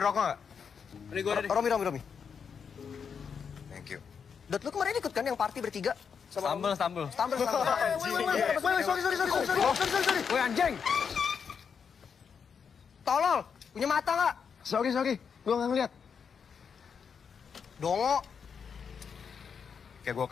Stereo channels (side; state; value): right; quieter; 6.5 dB